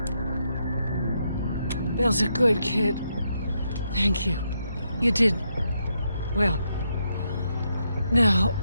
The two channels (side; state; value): both; inverted; correlation -0.80